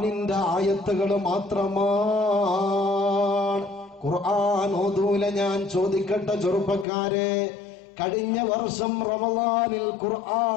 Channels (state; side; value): drops out; right; at 6.9 s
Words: ആയത്തുകൾ മാത്രമാണ്. ഖുർആൻ ഓതൂല. ഞാൻ ചോദിക്കട്ടെ ചെറുപ്പക്കാരെ, കഴിഞ്ഞ വർഷം റമളാനിൽ